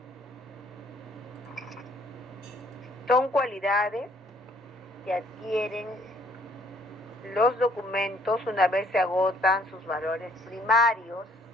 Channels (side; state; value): both; normal; correlation 0.62